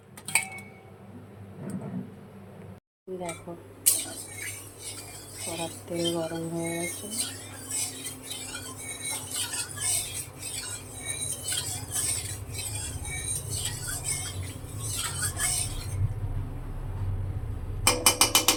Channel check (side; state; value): both; identical; correlation 1.00